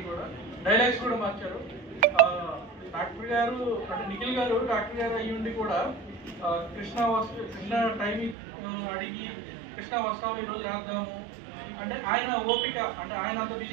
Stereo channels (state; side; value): drops out; left; at 8.3 s